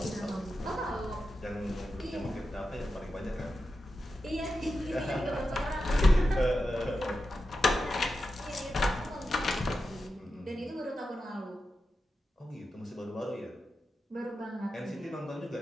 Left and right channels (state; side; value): normal; both; correlation 0.90